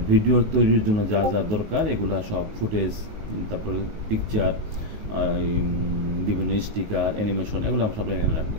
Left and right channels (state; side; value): late; left; 19 ms